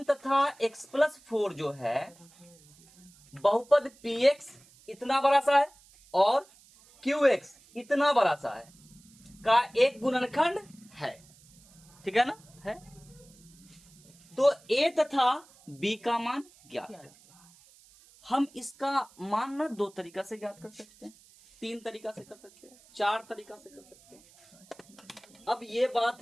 तथा x+4 जो है बहुपद px इतना बड़ा सा है और qx इतना बड़ा सा है का एक गुणनखंड है, ठीक है ना, है। तो a तथा b का मान ज्ञात क्या है। हम इसका मान ना दो तरीका से ज्ञात कर सकते हैं, तीन तरीका से कर सकते हैं, चार तरीका से कर सकते हैं। अब ये बात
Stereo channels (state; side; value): noise; right; hiss, 26 dB below the sound